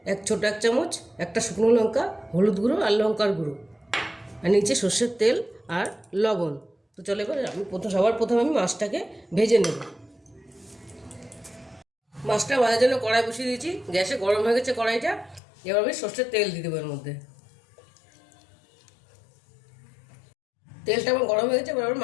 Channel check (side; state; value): right; drops out; at 15.4 s